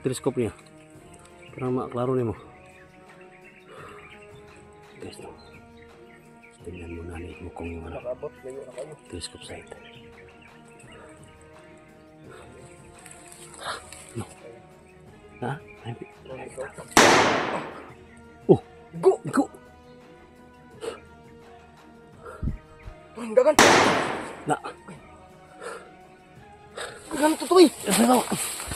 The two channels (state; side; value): identical; both; correlation 1.00